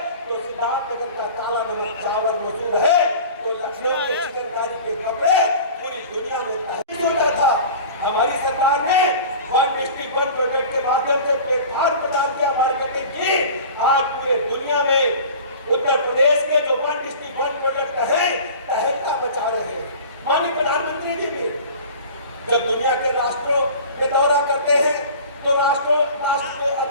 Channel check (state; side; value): inverted; both; correlation -0.40